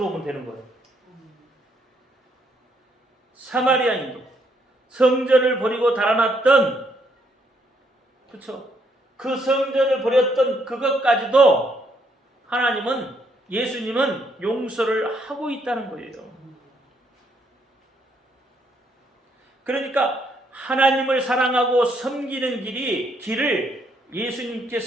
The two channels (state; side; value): normal; both; correlation 0.72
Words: 되는 거예요. 사마리아인도 성전을 버리고 달아났던, 그렇죠? 그 성전을 버렸던 그것까지도 예수님은 용서를 하고 있다는 거예요. 그러니까 하나님을 사랑하고 섬기는 길을